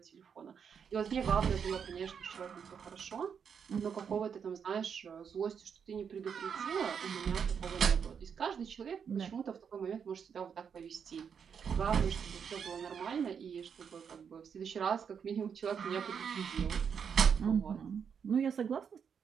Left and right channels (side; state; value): left; quieter; 7.0 dB